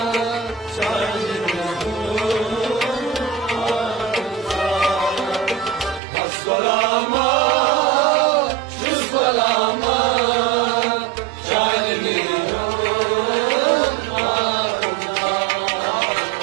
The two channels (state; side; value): drops out; left; at 6.0 s